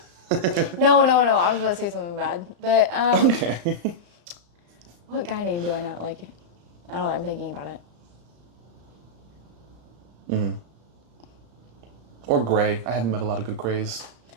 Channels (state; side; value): late; left; 34 ms